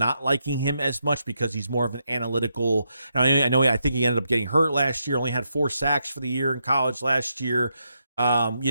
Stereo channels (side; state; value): both; inverted; correlation -0.81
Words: liking him as much because he's more of an analytical. I think he ended up getting hurt last year, only had 4 sacks for the year in college last year.